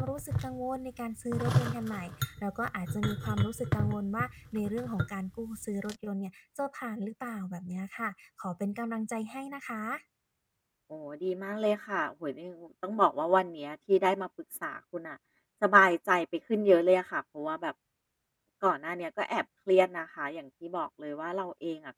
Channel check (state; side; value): identical; both; correlation 1.00